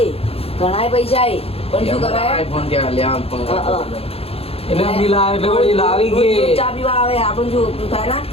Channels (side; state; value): right; late; 0.28 ms